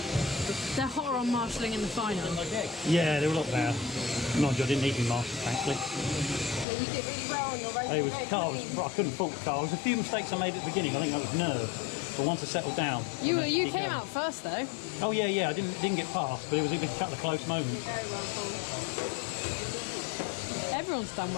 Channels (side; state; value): right; drops out; at 6.7 s